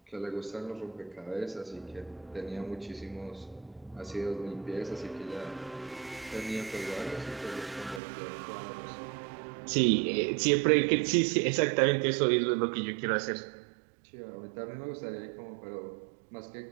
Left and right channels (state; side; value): drops out; left; at 8.0 s